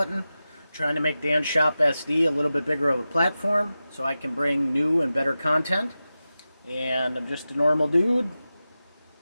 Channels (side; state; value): both; inverted; correlation -0.94